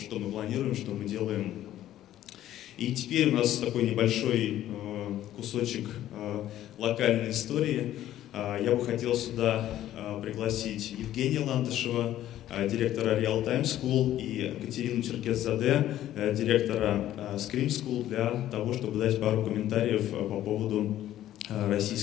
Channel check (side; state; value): right; quieter; 12.8 dB